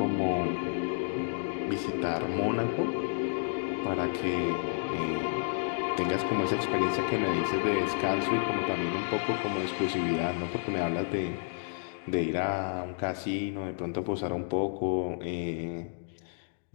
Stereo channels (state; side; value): silent; right; digital silence